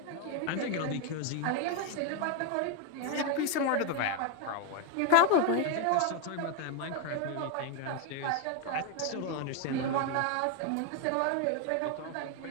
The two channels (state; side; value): different; both; correlation 0.01